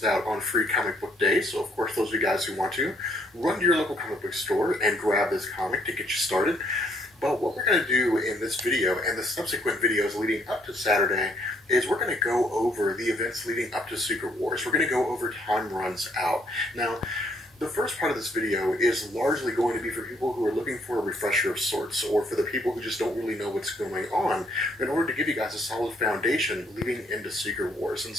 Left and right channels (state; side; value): normal; both; correlation 0.68